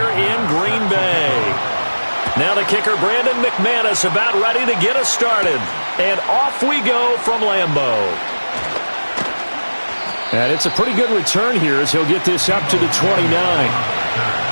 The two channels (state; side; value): inverted; both; correlation -1.00